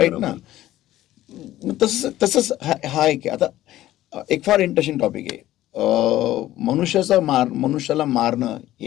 ना? तसंच हा एक आहे. आता एक फार इंटरेस्टिंग टॉपिक आहे. मनुष्याला मारणं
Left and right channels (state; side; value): quieter; right; 14.5 dB